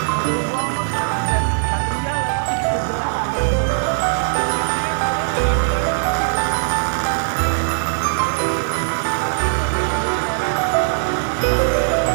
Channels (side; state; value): left; silent; digital silence